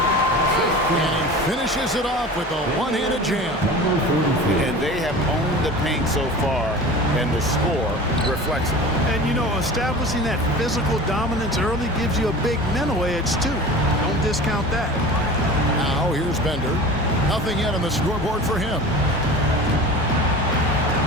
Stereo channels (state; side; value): normal; both; correlation 0.36